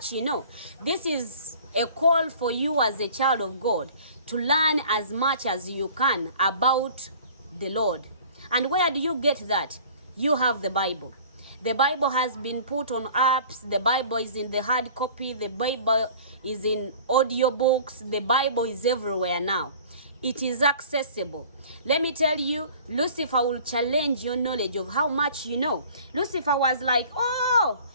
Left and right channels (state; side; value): inverted; both; correlation -0.47